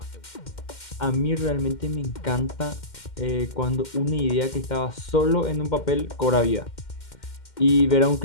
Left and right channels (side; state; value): right; late; 2.1 ms